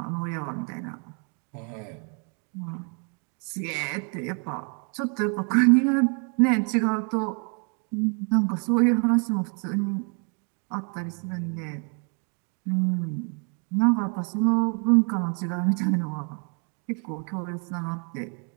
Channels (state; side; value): quieter; left; 38.5 dB